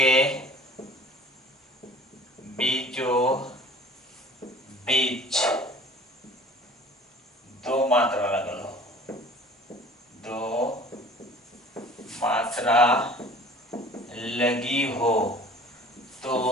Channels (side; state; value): both; normal; correlation 0.47